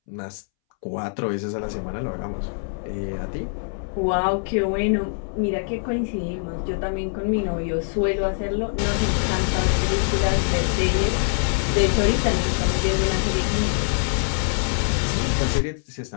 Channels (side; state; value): right; silent; 63 dB below the other